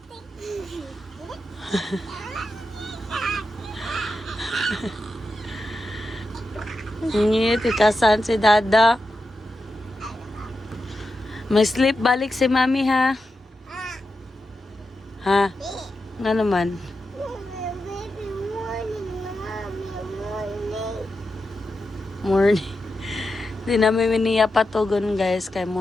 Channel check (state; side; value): normal; both; correlation 0.89